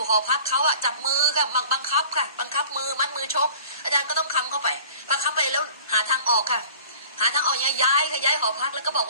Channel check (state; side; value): inverted; both; correlation -0.45